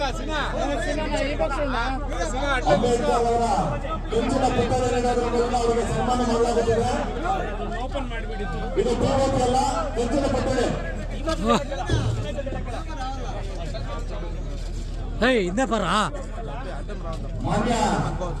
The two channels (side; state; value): both; identical; correlation 1.00